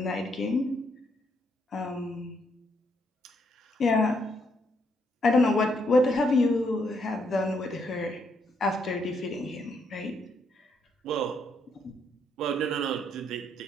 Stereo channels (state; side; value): normal; both; correlation 0.74